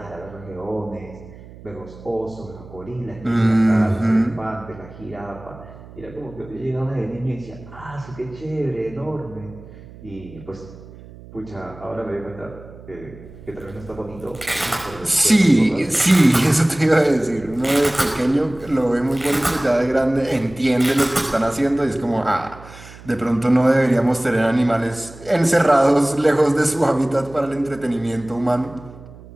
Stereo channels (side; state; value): right; noise; hum, 18 dB below the sound